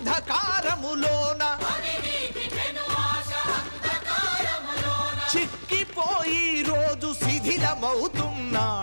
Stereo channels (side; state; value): both; inverted; correlation -1.00